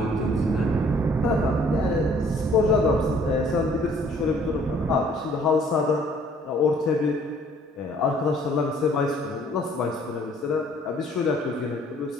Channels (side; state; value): both; normal; correlation 0.58